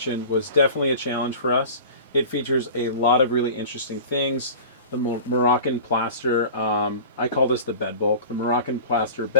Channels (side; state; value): both; inverted; correlation -0.37